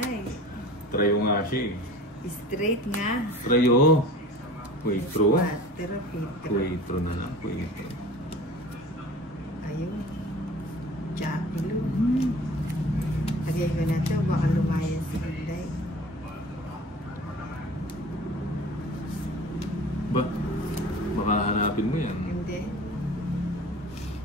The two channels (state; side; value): normal; both; correlation 0.42